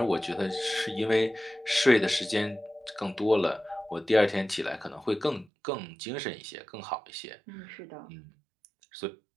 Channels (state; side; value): drops out; left; at 5.5 s